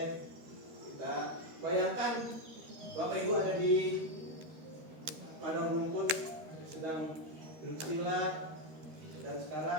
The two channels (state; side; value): late; left; 13 ms